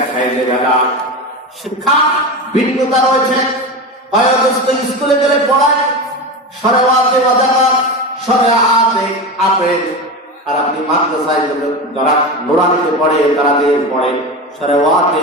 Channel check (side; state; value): both; normal; correlation 0.23